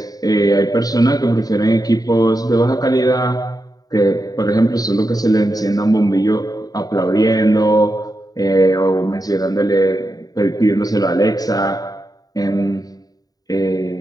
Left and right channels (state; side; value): late; right; 0.18 ms